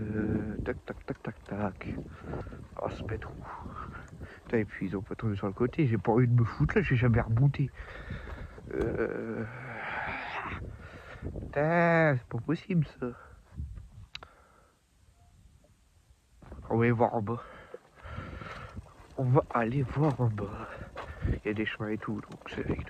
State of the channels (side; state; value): both; identical; correlation 1.00